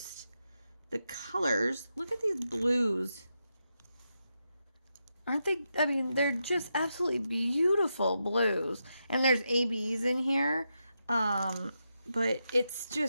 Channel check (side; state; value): both; inverted; correlation -0.86